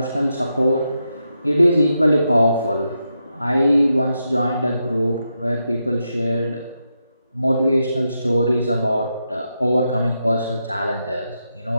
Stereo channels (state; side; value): inverted; both; correlation -0.85